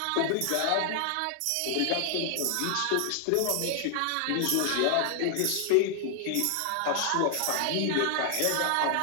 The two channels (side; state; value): both; different; correlation 0.00